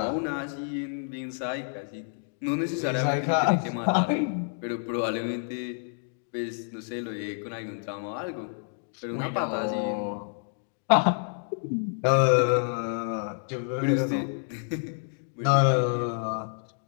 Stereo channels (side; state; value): right; silent; digital silence